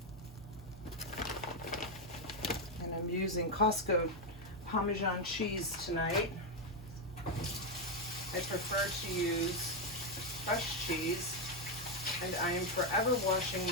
And I'm using Costco Parmesan cheese tonight. I prefer to use fresh cheese, and I am forever washing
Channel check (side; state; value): both; normal; correlation 0.04